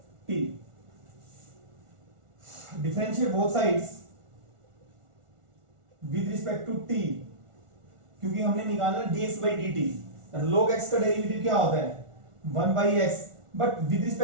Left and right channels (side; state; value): left; late; 1.4 ms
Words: Differentiate both sides with respect to t, क्योंकि हमने निकालना dx by dt। log x का डेरिवेटिव क्या होता है 1/x, but with